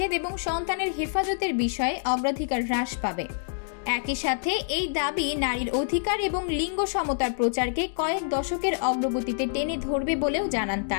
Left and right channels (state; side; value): silent; right; digital silence